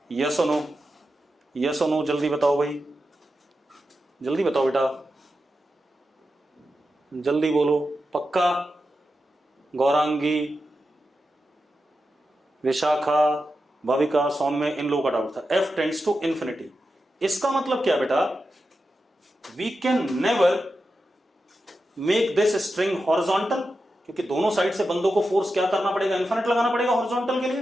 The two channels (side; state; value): both; normal; correlation 0.90